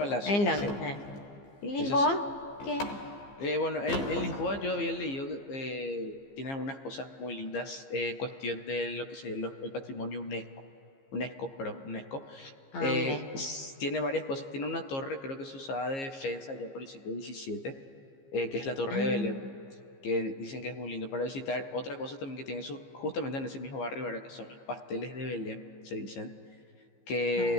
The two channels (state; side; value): late; right; 15 ms